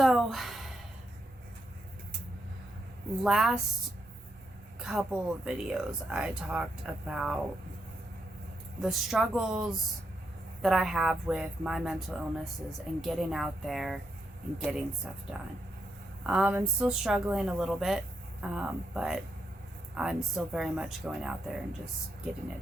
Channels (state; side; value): normal; both; correlation 0.81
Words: last couple of videos, I talked about the struggles that I have with my mental illnesses and getting out there and getting stuff done. I'm still struggling a little bit, but I'm still very much going out there and just getting